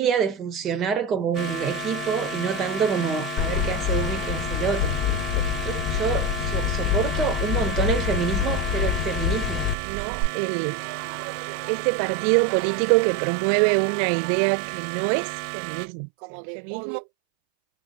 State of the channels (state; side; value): drops out; left; at 9.8 s